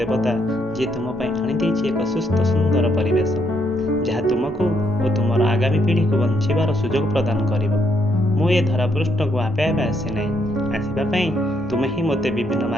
जी तुम आनी एक सुस्थ सुंदर परिवेश जहाँ तुमको और तुम आगामी पीढ़ी को बंचार सुजोग प्रदान कर। मुझे धरापृष्ठ को आपे आपे आसी ना, आसवाई तुम्हें ही मते विभिन्न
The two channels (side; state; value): both; normal; correlation 0.74